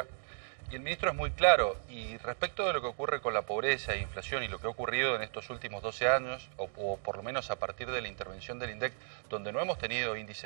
y el ministro es muy claro, y respecto de lo que ocurre con la pobreza e inflación y lo que ha ocurrido en estos últimos 12 años, o por lo menos a partir de la intervención del INDEC, donde no hemos tenido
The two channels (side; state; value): left; silent; digital silence